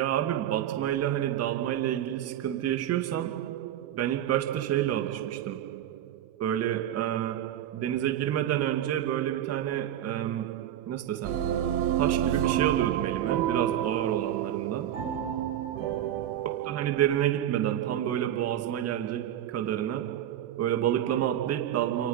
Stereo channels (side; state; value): left; quieter; 11.3 dB